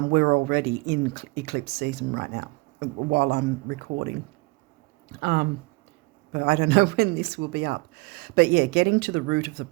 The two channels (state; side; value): quieter; left; 25.8 dB